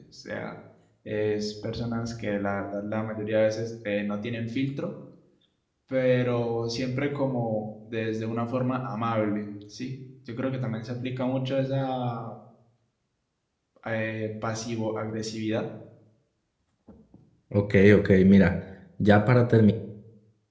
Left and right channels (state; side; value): identical; both; correlation 1.00